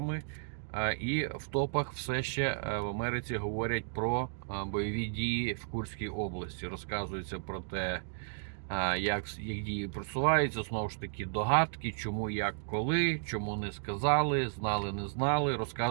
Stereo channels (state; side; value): silent; left; digital silence